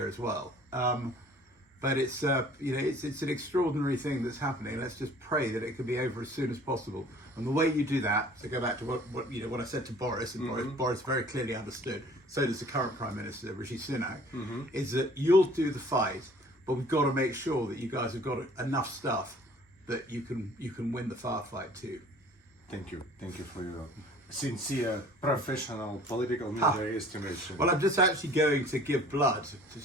as well. But it's, you know, it's an extraordinary thing that's happening. Let's just pray that it can be over as soon as possible. And the way you do that, to go back to what I said to Boris, and Boris very clearly understood, so does the current Prime Minister, Rishi Sunak, is that you'll do the fight, but we've got to make sure that you guys have got enough stuff that you can win the firefight too. Thank you for your sincere, professional, political military estimation. Well, I'm just actually going to give blood, to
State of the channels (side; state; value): both; normal; correlation 0.51